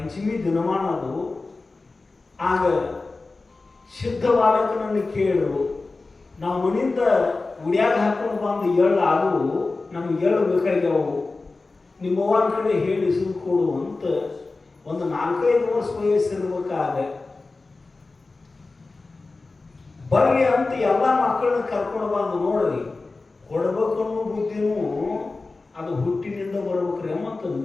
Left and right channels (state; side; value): quieter; right; 3.6 dB